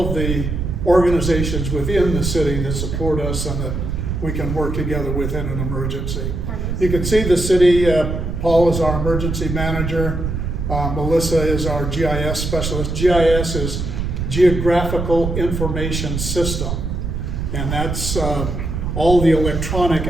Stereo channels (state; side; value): noise; right; rumble, 3 dB below the sound